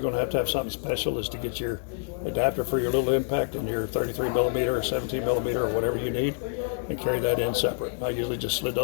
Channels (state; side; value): silent; right; 60 dB below the other